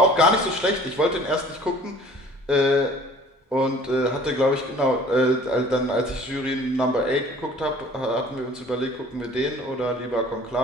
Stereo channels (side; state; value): both; normal; correlation 0.50